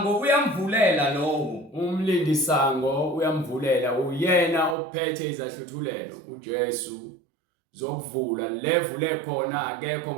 uyamvulela lowo. Umlindisango uyamvulela uyena ophethe izahluthulelo uJesu zokuvula. Levule khona akekho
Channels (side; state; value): left; drops out; at 4.8 s